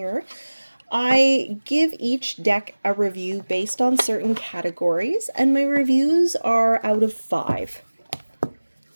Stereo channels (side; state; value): both; inverted; correlation -1.00